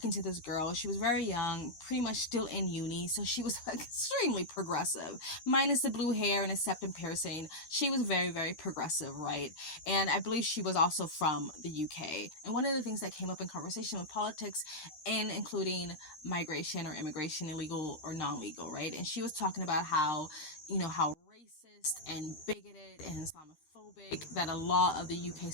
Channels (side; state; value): right; late; 13 ms